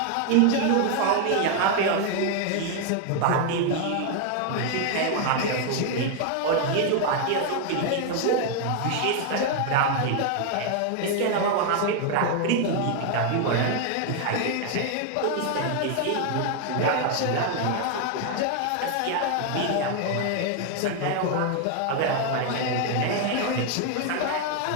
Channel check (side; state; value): both; different; correlation 0.00